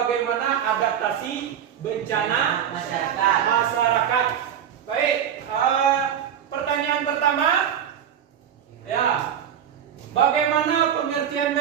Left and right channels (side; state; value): left; quieter; 9.1 dB